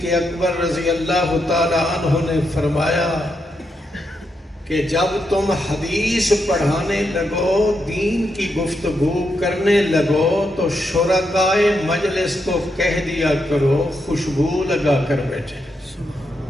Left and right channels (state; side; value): normal; both; correlation 0.82